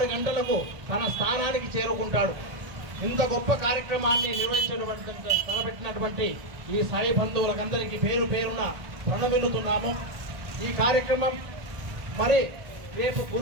గంటలకు తన స్థానానికి చేరుకుంటాడు. ఇంత గొప్ప కార్యక్రమాన్ని తలపెట్టినటువంటి ఈ సాయి బంధువులకందరికీ పేరు పేరున ప్రణమిల్లుతున్నాము. ఈ కార్యక్రమం మరి రేపు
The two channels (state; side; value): late; left; 1.4 ms